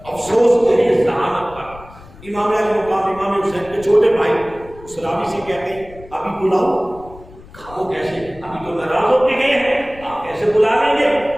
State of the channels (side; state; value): left; noise; rumble, 20 dB below the sound